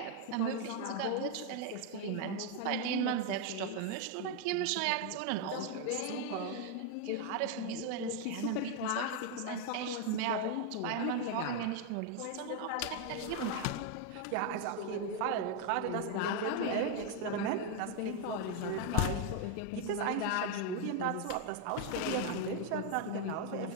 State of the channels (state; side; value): different; both; correlation 0.01